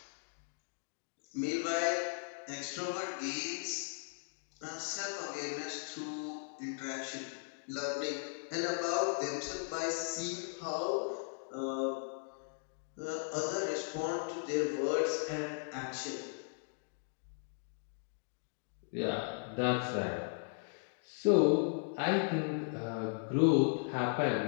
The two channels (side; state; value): right; silent; digital silence